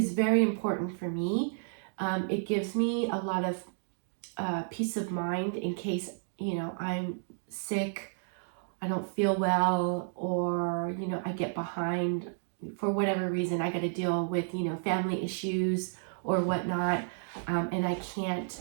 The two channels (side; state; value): left; silent; digital silence